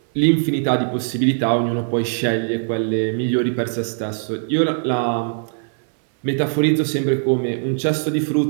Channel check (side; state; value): left; silent; 60 dB below the other